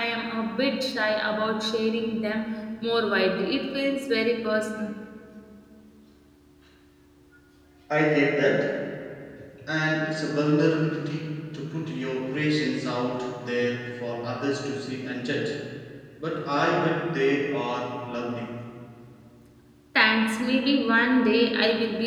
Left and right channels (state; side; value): identical; both; correlation 1.00